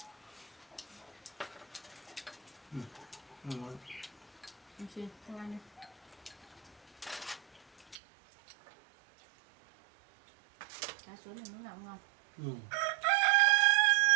Ngon. Em xin, anh ăn đi. Cá suối này muốn làm ngon.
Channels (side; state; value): left; drops out; at 8.0 s